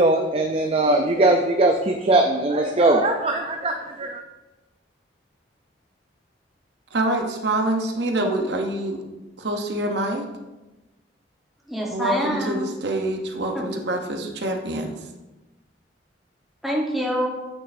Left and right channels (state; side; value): normal; both; correlation 0.31